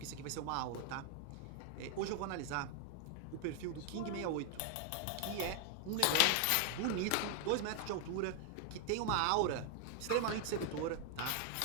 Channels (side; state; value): both; different; correlation 0.00